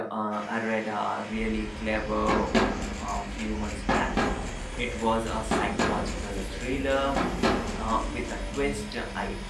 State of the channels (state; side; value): identical; both; correlation 1.00